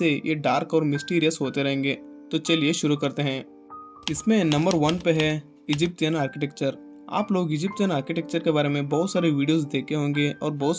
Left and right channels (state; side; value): identical; both; correlation 1.00